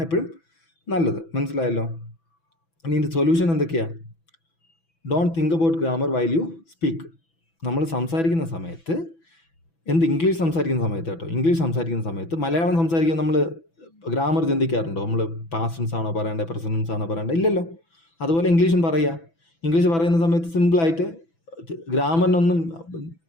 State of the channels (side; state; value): right; late; 6.0 ms